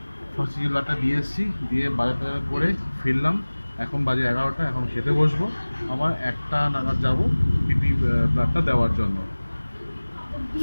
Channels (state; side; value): inverted; both; correlation -1.00